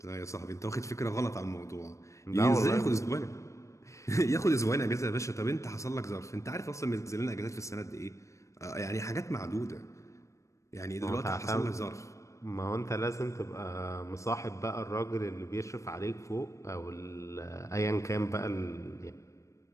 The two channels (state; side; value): late; right; 0.15 ms